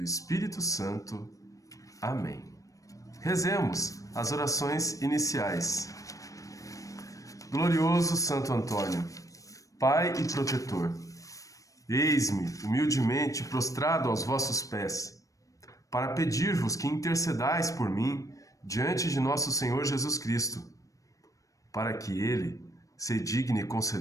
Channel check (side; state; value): right; late; 0.16 ms